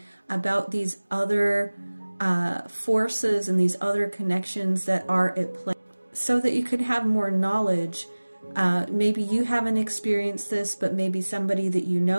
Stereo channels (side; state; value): both; inverted; correlation -1.00